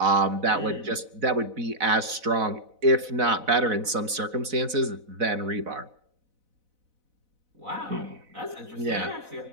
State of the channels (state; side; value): late; left; 4.0 ms